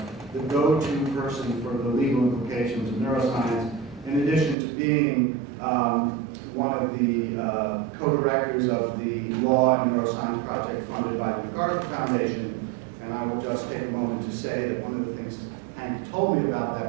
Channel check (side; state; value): left; drops out; at 4.5 s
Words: the go-to person for the legal implications of neuroscience, in addition to being one of the co-directors of the Law and Biosciences project funded by the MacArthur Foundation. And I will just take a moment to say that one of the things Hank told me about